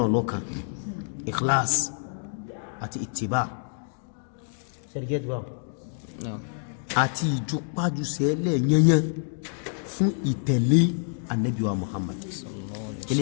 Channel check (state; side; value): silent; right; digital silence